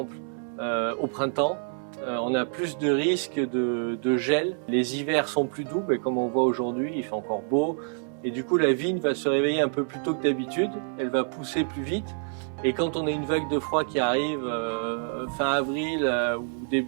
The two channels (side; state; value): left; silent; 60 dB below the other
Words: au printemps, on a plus de risques de gel. Les hivers sont plus doux, mais comme on voit aujourd'hui, il fait encore beau. Et du coup, la vigne va se réveiller un peu plus tôt que d'habitude, elle va pousser plus vite. Et quand on a une vague de froid qui arrive fin avril ou